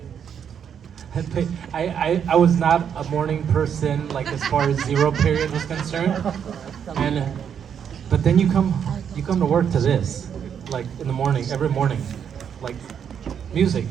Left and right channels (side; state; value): left; quieter; 8.1 dB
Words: I was not a morning person, like as far as zero period was concerned, and but then you come to work to this, like in the morning, every morning, like music.